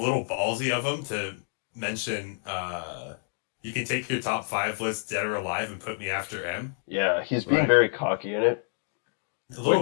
ballsy of him to mention you can take your top five list dead or alive and put me after M. yeah, he's being Right. very cocky in it. A little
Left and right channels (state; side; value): silent; right; digital silence